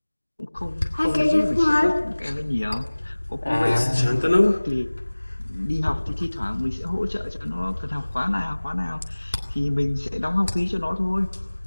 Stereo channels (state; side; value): inverted; both; correlation -1.00